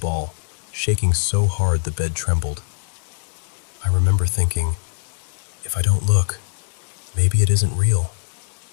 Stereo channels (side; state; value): right; silent; digital silence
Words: shaking so hard the bed trembled. I remember thinking, if I don't look, maybe it isn't real.